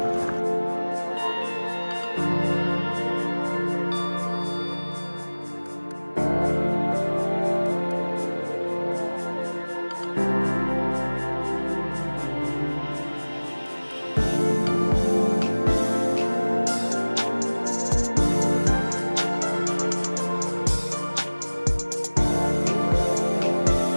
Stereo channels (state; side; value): inverted; both; correlation -1.00